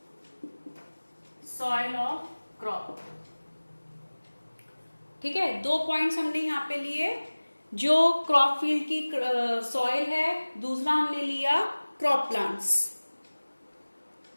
soil of crop. ठीक है, दो पॉइंट्स हमने यहां पे लिए, जो क्रॉप फील्ड की सॉइल है, दूसरा हमने लिया क्रॉप प्लांट्स।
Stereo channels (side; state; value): both; inverted; correlation -1.00